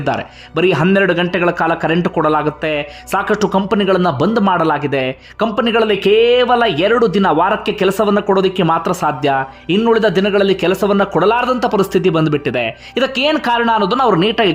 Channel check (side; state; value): both; identical; correlation 1.00